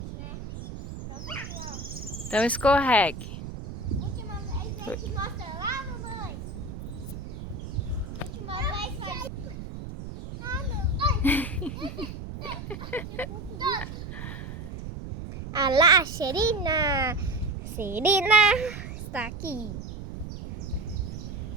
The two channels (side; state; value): right; noise; rumble, 9 dB below the sound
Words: né? Só porque, ó, Então escorregue. última vez a gente mostra lá, mamãe. Última vez faz... Ah, não. Ah lá, Serina. Serina está aqui.